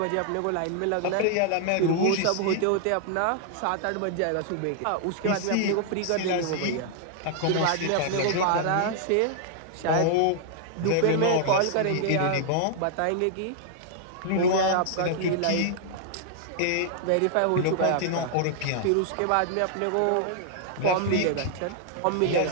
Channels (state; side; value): different; both; correlation -0.01